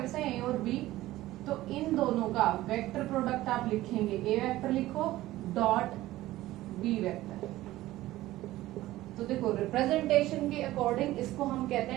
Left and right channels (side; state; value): left; quieter; 16.2 dB